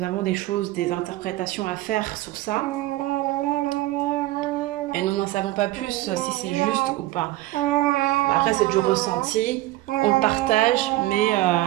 avons des choses, des interprétations à faire sur ça, et nous n'en savons pas plus si c'est juste ou pas. Après, c'est du ressenti, on le partage, mais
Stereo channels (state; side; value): quieter; left; 17.0 dB